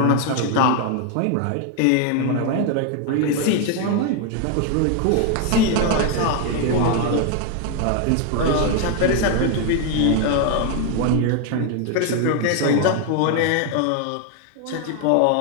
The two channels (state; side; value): different; both; correlation 0.01